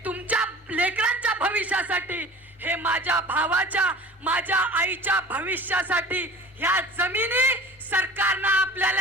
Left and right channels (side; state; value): both; normal; correlation 0.42